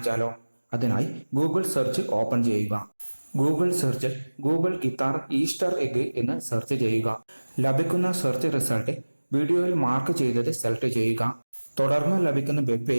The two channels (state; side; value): inverted; both; correlation -1.00